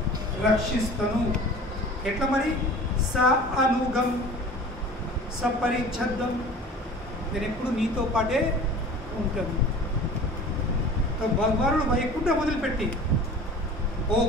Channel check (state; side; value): normal; both; correlation 0.41